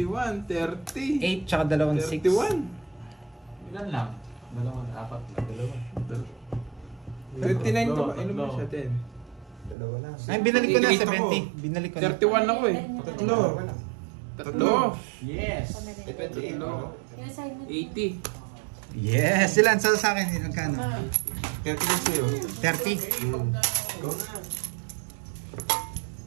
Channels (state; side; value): drops out; left; at 9.8 s